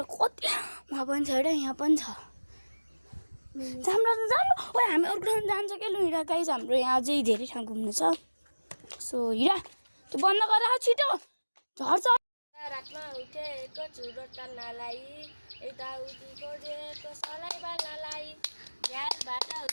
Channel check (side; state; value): both; inverted; correlation -1.00